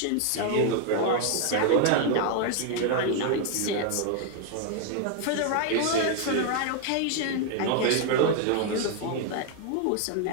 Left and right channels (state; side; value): different; both; correlation 0.00